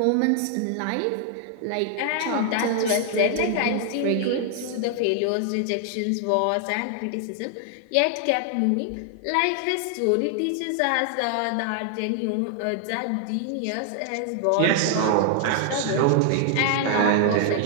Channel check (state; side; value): different; both; correlation 0.00